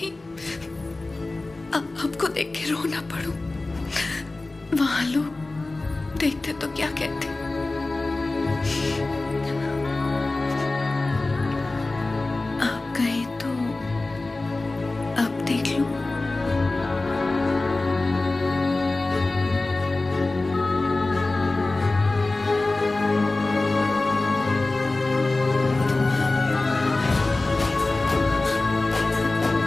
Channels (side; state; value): right; quieter; 3.1 dB